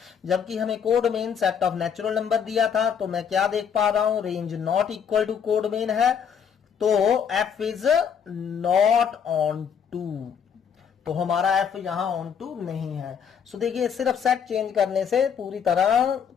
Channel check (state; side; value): quieter; right; 7.4 dB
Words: जबकि हमें codomain set of natural number दिया था। तो मैं क्या देख पा रहा हूं, range not equal to codomain है, तो f is not onto. तो हमारा एफ यहां ऑन टू नहीं है। सो देखिए, सिर्फ सेट चेंज करने से पूरी तरह